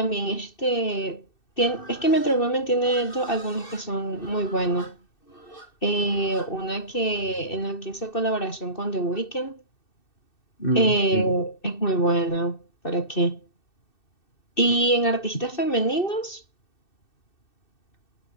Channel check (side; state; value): right; late; 2.6 ms